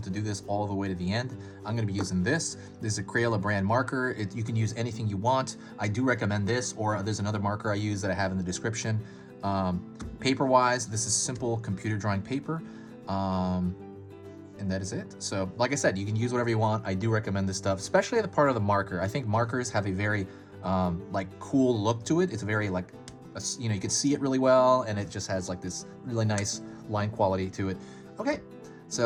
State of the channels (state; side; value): identical; both; correlation 1.00